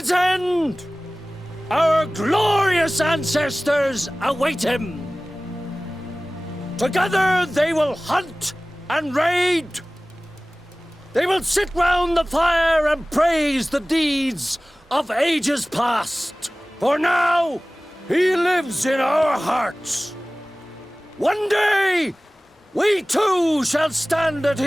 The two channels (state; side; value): normal; both; correlation 0.98